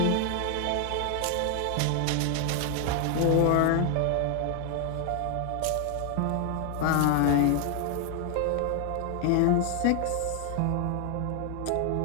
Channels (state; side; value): different; both; correlation 0.00